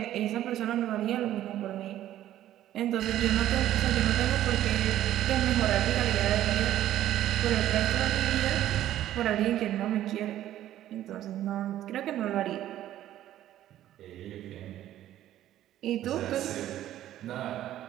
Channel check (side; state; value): left; quieter; 12.8 dB